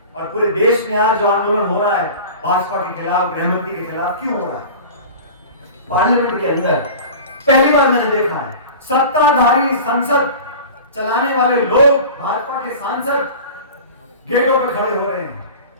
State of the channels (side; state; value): both; inverted; correlation -0.37